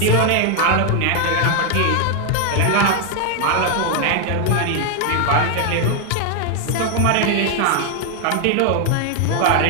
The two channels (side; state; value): both; different; correlation 0.00